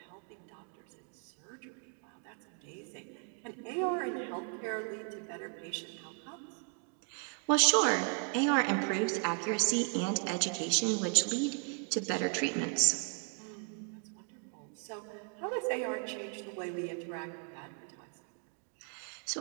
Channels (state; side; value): quieter; left; 35.5 dB